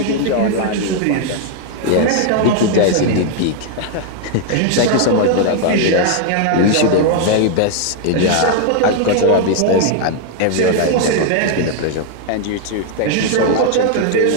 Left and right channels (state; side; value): different; both; correlation 0.00